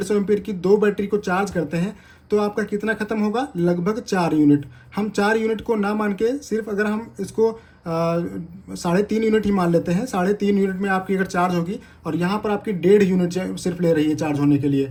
एम्पियर की 2 बैटरी को चार्ज करते हैं तो आपका कितना खत्म होगा, लगभग 4 यूनिट। हम 4 यूनिट को ना मान के सिर्फ अगर हम इसको 3.5 यूनिट ही मान लेते हैं, 3.5 यूनिट में आपकी अगर चार्ज होगी, और यहाँ पर आपकी 1.5 यूनिट सिर्फ ले रही है चार्ज होने के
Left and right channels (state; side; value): identical; both; correlation 1.00